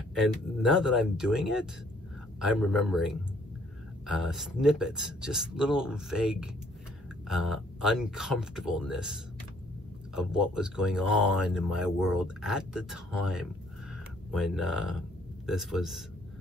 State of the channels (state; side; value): normal; both; correlation 0.63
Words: And now that I'm doing it, I'm remembering snippets, just little vague uncomfortableness of what was going on in my world at the time when this was